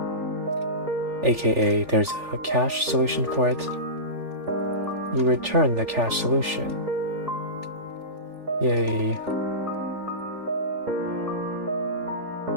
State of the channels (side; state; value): left; late; 3.4 ms